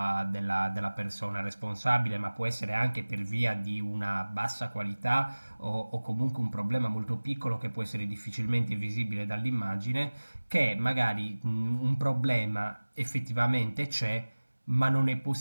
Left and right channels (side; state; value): both; inverted; correlation -1.00